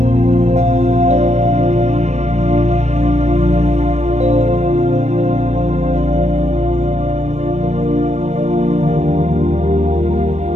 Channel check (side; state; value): left; late; 0.32 ms